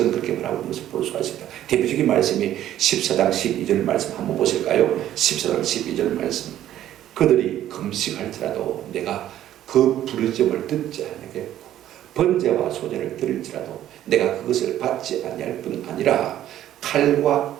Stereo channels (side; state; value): left; quieter; 12.2 dB